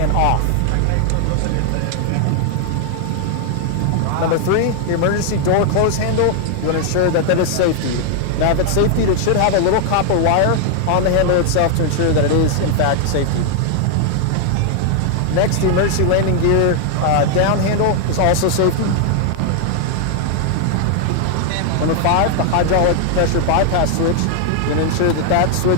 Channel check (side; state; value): both; different; correlation 0.00